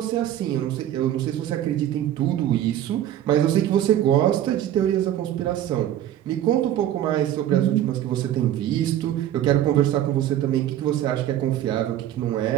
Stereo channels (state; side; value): quieter; left; 11.8 dB